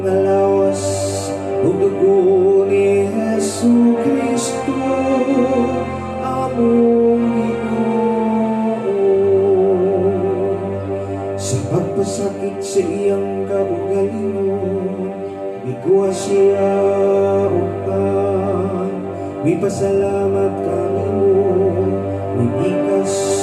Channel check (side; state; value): both; identical; correlation 1.00